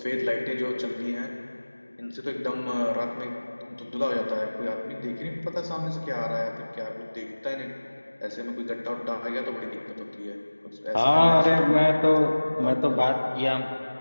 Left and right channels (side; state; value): both; inverted; correlation -1.00